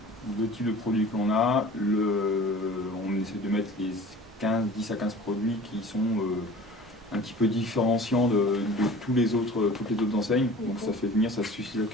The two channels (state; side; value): normal; both; correlation 0.43